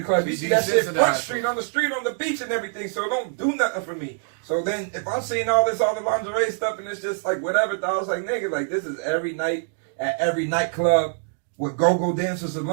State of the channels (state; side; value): silent; left; digital silence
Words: club. You see that shit Front Street, on the beach and everything, so it don't do nothing for me. So then, if I'm seeing all the lingerie stuff, and it's just like whatever, I was like, nigga, like this is every night at every nightclub with go-go dancers